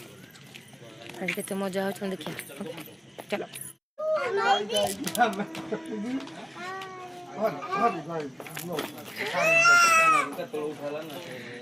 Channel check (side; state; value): both; identical; correlation 1.00